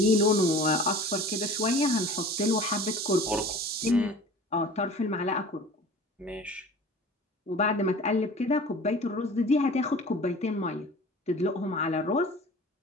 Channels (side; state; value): both; normal; correlation 0.41